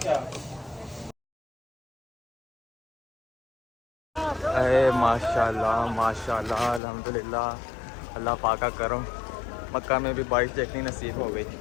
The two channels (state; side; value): drops out; right; at 6.8 s